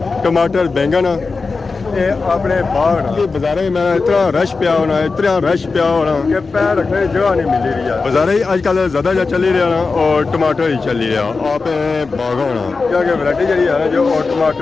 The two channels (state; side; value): quieter; right; 4.2 dB